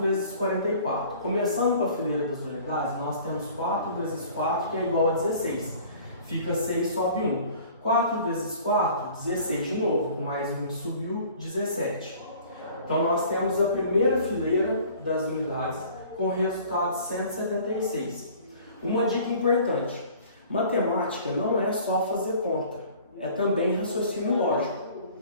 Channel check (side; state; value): both; inverted; correlation -0.49